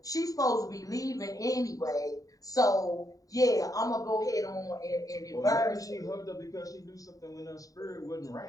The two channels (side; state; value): right; late; 0.17 ms